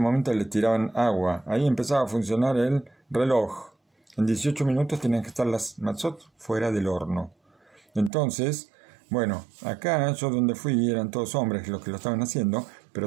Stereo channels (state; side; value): drops out; left; at 8.1 s